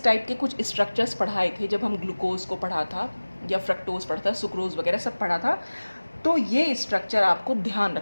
टाइप के कुछ स्ट्रक्चर्स पढ़ाए थे जब हम ग्लूकोज को पढ़ा था, या फ्रक्टोज पढ़ा था, सुक्रोज वगैरह सब पढ़ा था। तो ये स्ट्रक्चर आपको ध्यान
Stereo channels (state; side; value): inverted; both; correlation -1.00